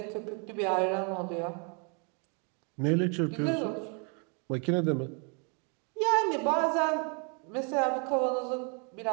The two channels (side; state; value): left; quieter; 36.5 dB